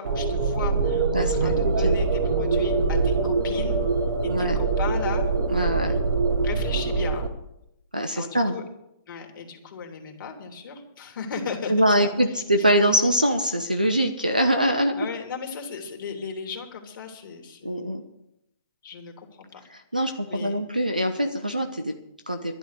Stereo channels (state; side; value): inverted; both; correlation -0.59